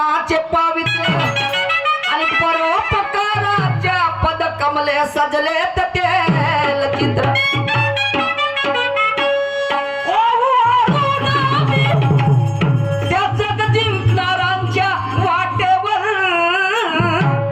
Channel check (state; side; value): identical; both; correlation 1.00